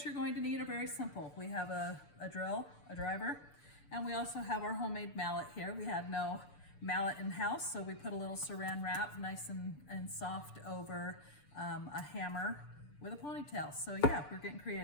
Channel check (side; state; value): right; late; 6.9 ms